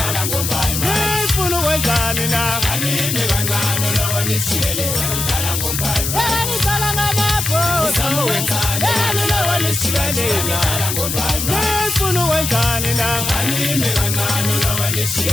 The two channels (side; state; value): left; noise; hiss, 2 dB below the sound